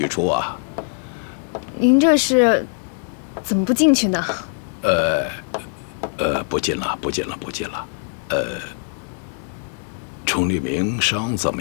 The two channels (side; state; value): right; silent; digital silence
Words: 初啊，您这是怎么不进去呢？不进了，不进了，不进了。崇立明伤怎么